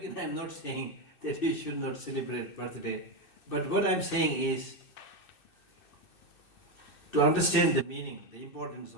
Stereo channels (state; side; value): late; right; 2.6 ms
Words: saying that you should not celebrate birthday. But what I am saying is, to understand the meaning, the importance